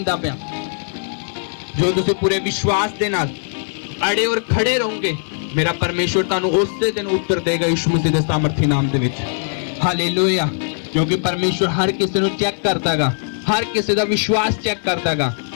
ਪਿਆ। ਜੋ ਤੁਸੀਂ ਪੂਰੇ ਵਿਸ਼ਵਾਸ ਦੇ ਨਾਲ ਅੜੇ ਔਰ ਖੜੇ ਰਹੋਗੇ, ਮੇਰਾ ਪਰਮੇਸ਼ਵਰ ਤੁਹਾਨੂੰ ਉਸੇ ਦਿਨ ਉੱਤਰ ਦੇਗਾ ਯਿਸੂ ਮਸੀਹ ਦੇ ਸਾਮਰਥੀ ਨਾਮ ਦੇ ਵਿੱਚ। ਹਾਲੇਲੂਇਆ। ਕਿਉਂਕਿ ਪਰਮੇਸ਼ਵਰ ਹਰ ਕਿਸੇ ਨੂੰ ਚੈੱਕ ਕਰਦਾਗਾ, ਹਰ ਕਿਸੇ ਦਾ ਵਿਸ਼ਵਾਸ ਚੈੱਕ ਕਰਦਾਗਾ।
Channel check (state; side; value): silent; right; digital silence